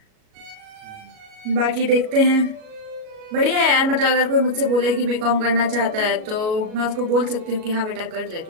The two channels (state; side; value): late; left; 37 ms